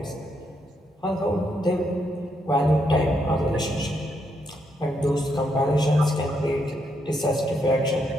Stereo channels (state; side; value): normal; both; correlation 0.78